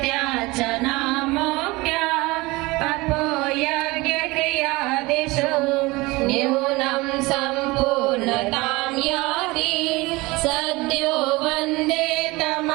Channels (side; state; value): left; quieter; 22.4 dB